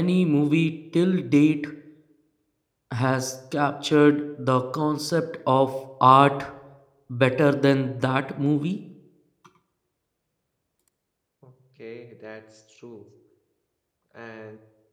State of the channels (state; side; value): identical; both; correlation 1.00